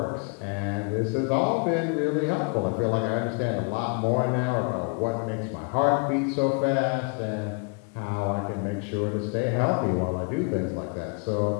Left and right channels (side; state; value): right; quieter; 35.7 dB